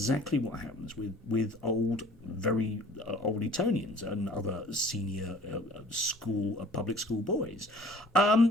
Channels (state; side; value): normal; both; correlation 0.51